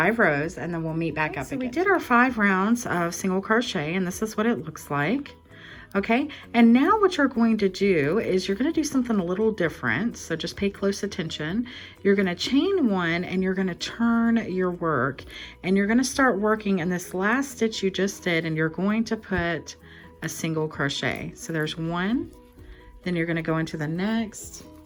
rows, and then we'll meet back up again. So we did our 5 rounds of single crochet, and this is what it looks like. Okay, and now what you're going to do is you're going to do something a little different, so just pay close attention. You're going to chain 1 and you're going to turn your work, and you're going to start working in this last stitch you just did, and you're going to put a single crochet. So there's 1, then you're going to go into the next,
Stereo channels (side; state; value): both; identical; correlation 1.00